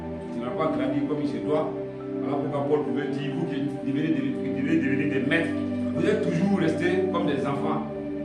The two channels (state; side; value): identical; both; correlation 1.00